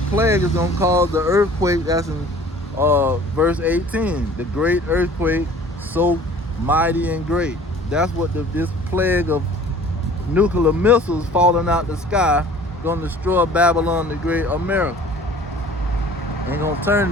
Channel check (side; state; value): both; normal; correlation 0.49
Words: plague is going to cause the earthquake. That's in verse 18. The great earthquake, so mighty and great. That's what this plague of nuclear missiles falling out the sky going to destroy Babylon the Great, America. And going to